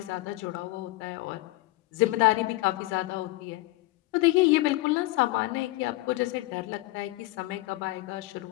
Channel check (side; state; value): right; quieter; 20.0 dB